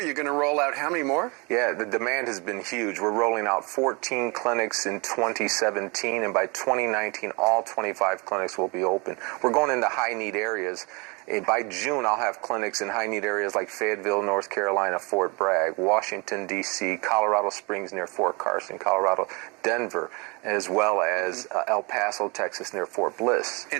going to roll out how many more? Yeah, the demand has been huge. We're rolling out 14 clinics in 2017, and by 2019, all 25 clinics will be open. We're going into high-need areas, And by June, I'll have clinics in high-need areas like Fayetteville, North Carolina, Fort Bragg, Washington, D.C., Colorado Springs near Fort Carson, Colorado, Denver, as well as El Paso, Texas near Fort Bliss.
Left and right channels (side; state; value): left; quieter; 29.3 dB